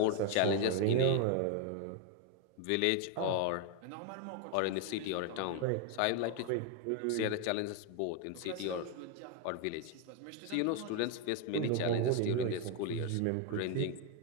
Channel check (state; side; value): different; both; correlation 0.01